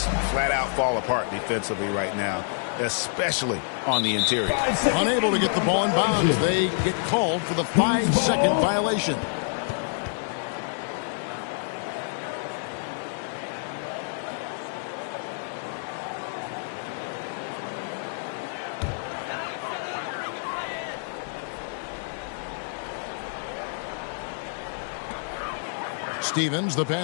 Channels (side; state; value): right; silent; digital silence